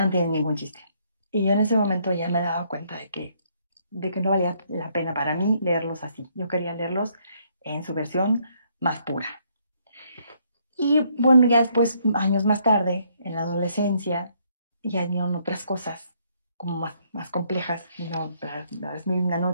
no tienen ningún chiste. Y yo en ese momento ya me he dado cuenta de que no valía la pena para mí leerlos así. Yo quería leerlos en su versión más pura. Y bueno, ya después, años más tarde, en la adolescencia, ya vinieron otras cosas como más complejas. Las Mil y una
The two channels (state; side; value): inverted; both; correlation -0.69